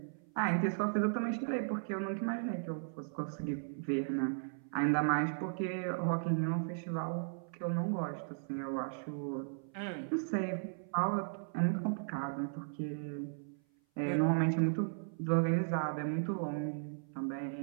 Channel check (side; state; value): left; silent; 54 dB below the other